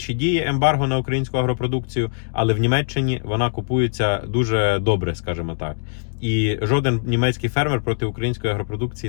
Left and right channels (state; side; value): silent; right; digital silence